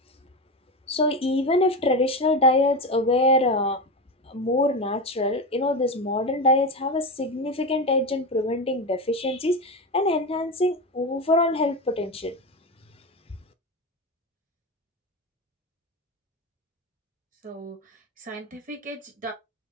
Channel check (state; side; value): normal; both; correlation 0.19